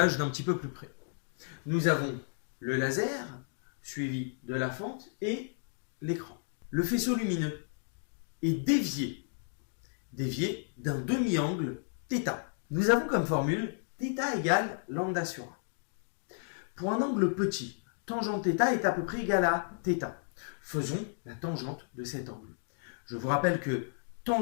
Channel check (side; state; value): right; silent; digital silence